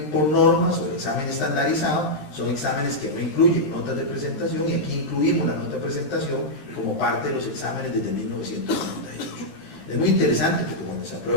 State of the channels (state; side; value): late; right; 13 ms